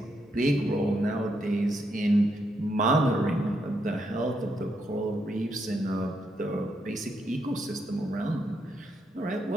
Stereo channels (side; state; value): both; normal; correlation 0.79